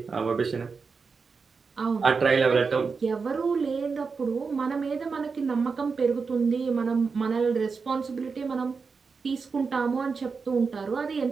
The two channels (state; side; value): quieter; left; 5.0 dB